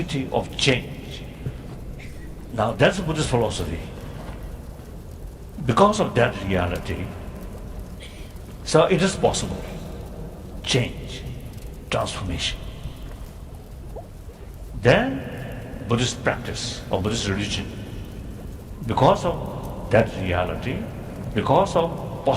of change. Now that's Buddhist philosophy. Because of that reality, so it is possible. Change, transformation. Then Buddhist practice or Buddhist religion, because of that reality, because of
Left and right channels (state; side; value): identical; both; correlation 1.00